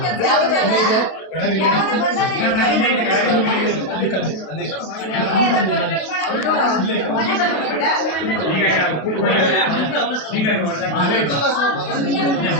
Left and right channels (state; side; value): late; right; 32 ms